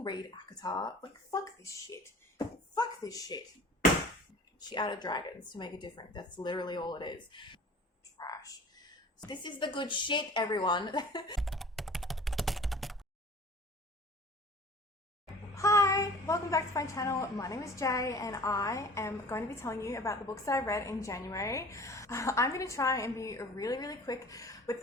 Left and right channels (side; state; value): both; normal; correlation 0.45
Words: read ACOTAR. Like, fuck this shit. Fuck this shit. She added dragons to make it different. That's literally all it is. Trash. This is the good shit, everyone. Hi, welcome back to my channel. My name is Jay and I am going to be telling you about the books that I read in January. I'm going to try and be really quick with